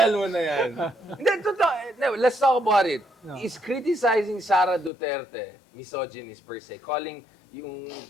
mo na yan? Hindi, totoo. No, let's talk about it. Is criticizing Sara Duterte misogynist per se, calling yung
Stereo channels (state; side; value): drops out; right; at 4.9 s